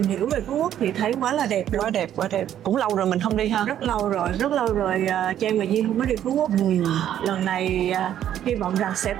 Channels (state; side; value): quieter; left; 10.8 dB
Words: hiểu về Phú Quốc thì thấy quá là đẹp luôn. Quá đẹp. Cũng lâu rồi mình không đi ha. Rất lâu rồi Trang và Duyên không có đi Phú Quốc. Lần này hy vọng rằng sẽ